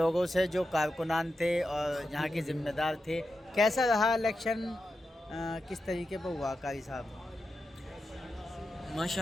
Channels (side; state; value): both; normal; correlation 0.89